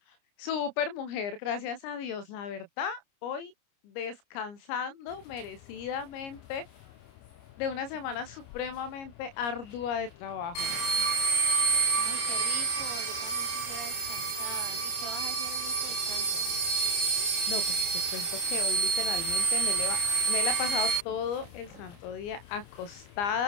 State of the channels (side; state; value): right; late; 29 ms